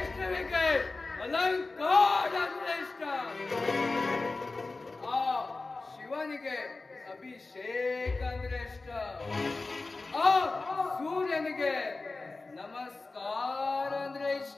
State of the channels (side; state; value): right; quieter; 3.6 dB